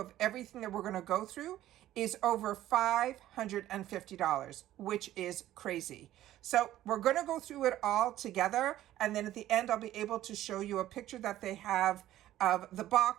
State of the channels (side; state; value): left; quieter; 13.7 dB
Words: everything that we're going to go through is over $550, which is crazy. So we're going to go through it all together. And then at the end, I'll be able to show you a picture that they have of the